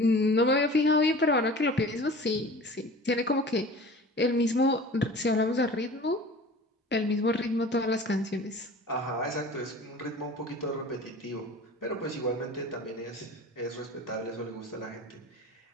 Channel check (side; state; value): both; normal; correlation 0.41